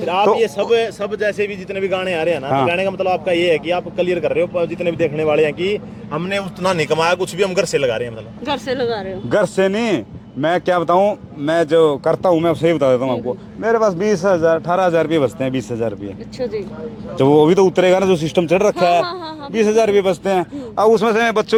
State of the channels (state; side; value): identical; both; correlation 1.00